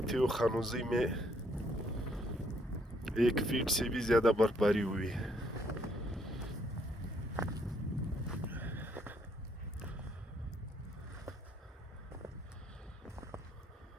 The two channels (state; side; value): normal; both; correlation 0.69